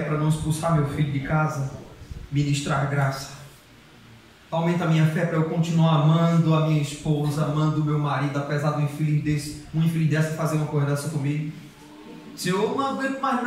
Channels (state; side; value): identical; both; correlation 1.00